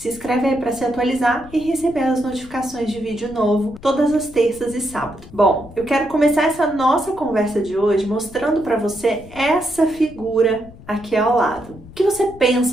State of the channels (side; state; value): left; noise; rumble, 19 dB below the sound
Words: inscreve aí para se atualizar e receber as notificações de vídeo novo todas as terças e sábados. Bom, eu quero começar essa nossa conversa de hoje mostrando para você essa figura aqui ao lado. O que você